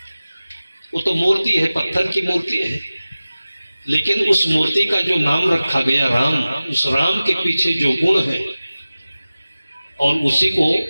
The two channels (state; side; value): inverted; both; correlation -0.97